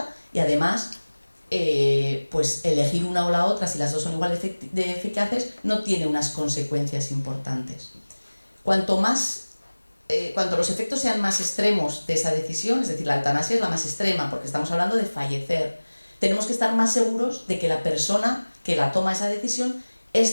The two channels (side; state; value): both; inverted; correlation -1.00